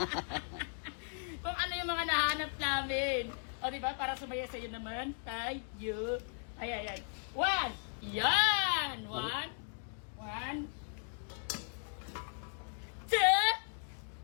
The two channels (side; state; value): right; silent; 53 dB below the other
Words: Kung ano yung mga nahanap namin. O, di ba? Para sumaya sa iyo naman. Tayo. Ayan. One. Yan. One. Two.